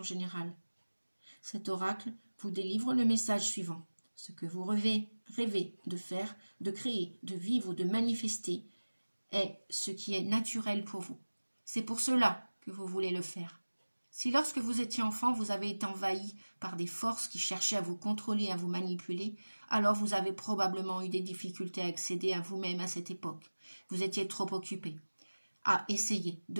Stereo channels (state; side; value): inverted; both; correlation -1.00